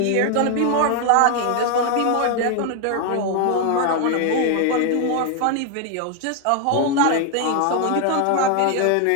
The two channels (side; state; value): both; different; correlation 0.01